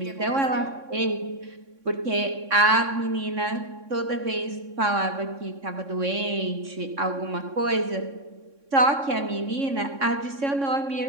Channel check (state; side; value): late; left; 3.6 ms